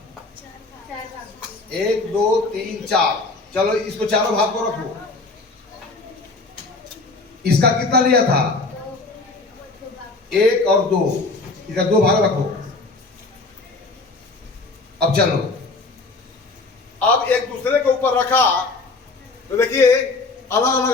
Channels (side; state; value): right; quieter; 3.5 dB